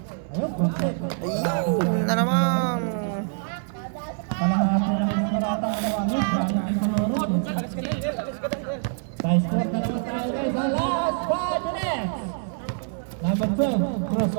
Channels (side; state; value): left; silent; digital silence